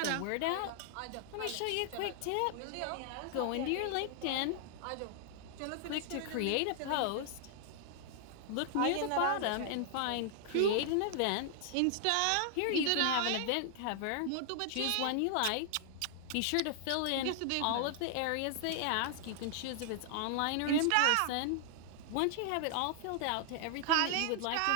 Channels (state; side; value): different; both; correlation 0.00